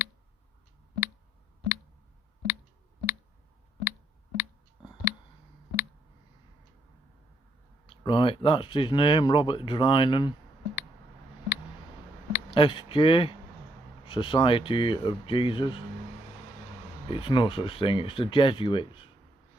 Right, that's his name, Robert Drinan, SJ, Society of Jesus. It's no such thing, it's the Jesuits.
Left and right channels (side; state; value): both; normal; correlation 0.74